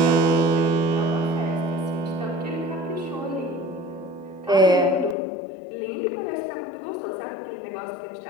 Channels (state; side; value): drops out; right; at 5.2 s